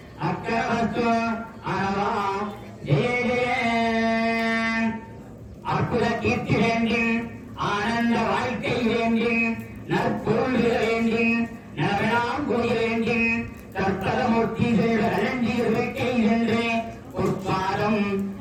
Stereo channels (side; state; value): both; identical; correlation 1.00